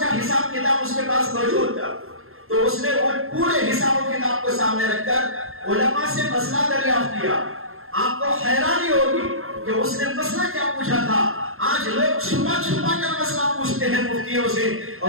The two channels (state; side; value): late; left; 0.61 ms